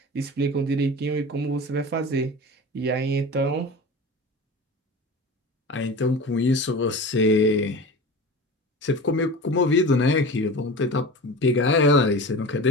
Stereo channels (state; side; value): normal; both; correlation 0.33